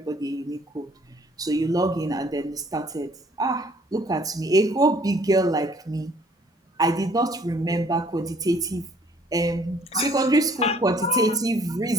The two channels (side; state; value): both; normal; correlation 0.59